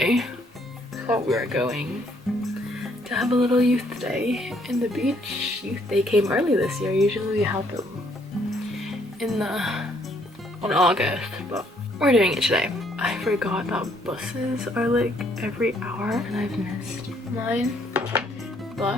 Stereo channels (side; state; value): both; normal; correlation 0.67